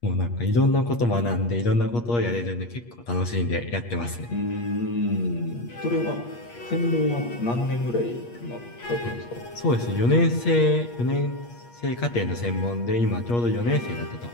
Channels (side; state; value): right; late; 8.5 ms